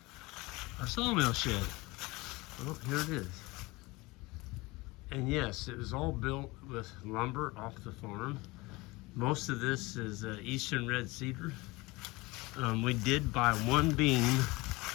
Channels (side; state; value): right; quieter; 22.7 dB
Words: our sawmill shed. Well, here it is. And yes, it was all built with lumber off the farm. Most of this is eastern red cedar. We did buy one beam